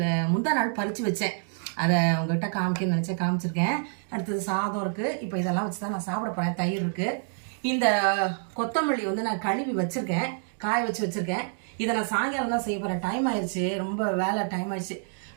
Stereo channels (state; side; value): silent; left; 58 dB below the other